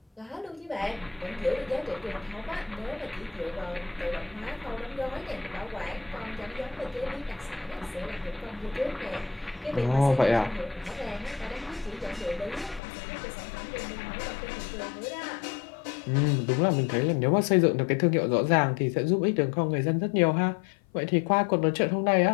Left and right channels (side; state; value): right; drops out; at 12.8 s